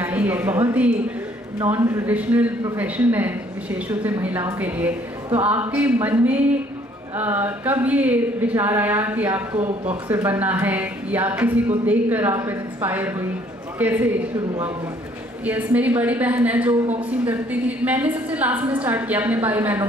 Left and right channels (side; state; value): both; normal; correlation 0.62